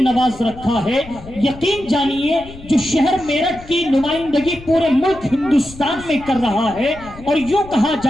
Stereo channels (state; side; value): noise; left; rumble, 18 dB below the sound